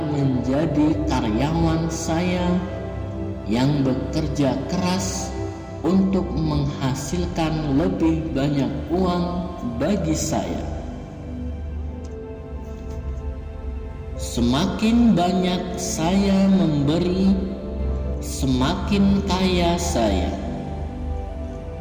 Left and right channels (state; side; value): identical; both; correlation 1.00